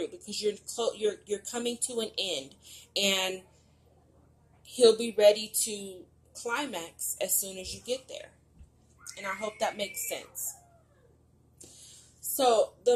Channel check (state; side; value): identical; both; correlation 1.00